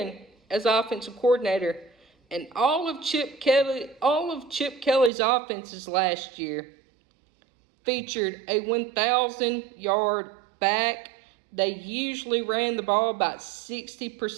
as offensive coordinator, and all of Chip Kelly's offenses last year featured a 1,000-yard back. They usually ran the ball about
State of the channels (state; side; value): drops out; left; at 5.1 s